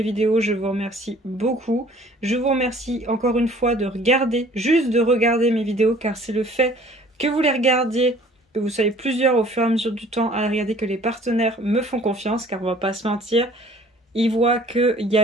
vidéos. Je vous remercie beaucoup. Je vous remercie encore une fois de regarder, juste de regarder mes vidéos car c'est le fait que vous les regardiez, que vous soyez plusieurs au fur et à mesure du temps à regarder que les partenaires me font confiance car on va pas se mentir. Ils voient qu'il y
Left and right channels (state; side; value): normal; both; correlation 0.53